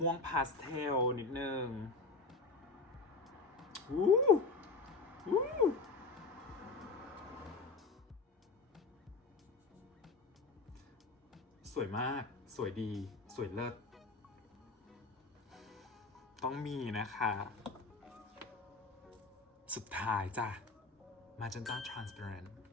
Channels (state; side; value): quieter; right; 3.9 dB